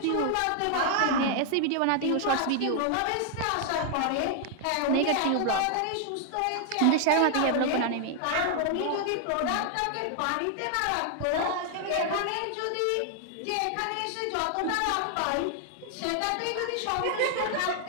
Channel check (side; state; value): both; different; correlation 0.00